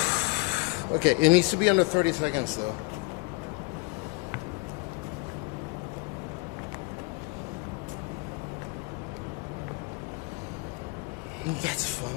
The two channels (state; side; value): quieter; right; 28.8 dB